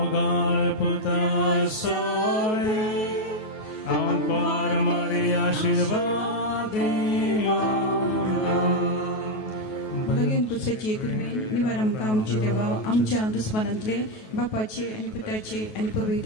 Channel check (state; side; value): late; right; 9.3 ms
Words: पुता सोरे हांव पार मरी आशीर्वाद भगीन पुस्तकाची कृपे निवार आमकां आमची देवा आमच्या दुस्मानांतले बापाचे आनी पुताचे आनी